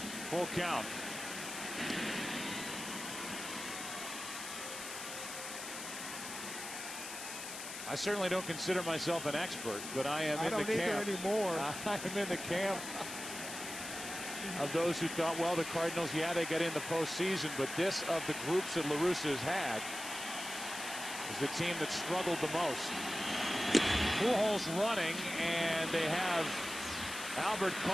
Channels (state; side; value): noise; left; hiss, 8 dB below the sound